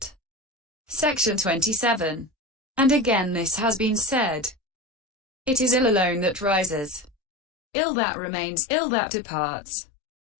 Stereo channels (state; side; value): drops out; right; at 7.1 s